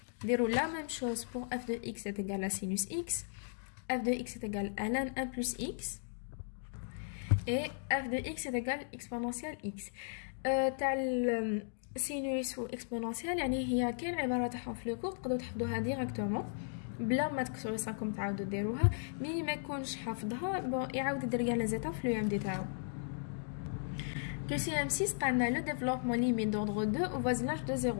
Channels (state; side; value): silent; right; digital silence